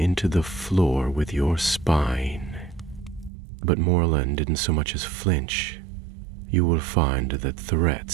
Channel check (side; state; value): left; drops out; at 3.3 s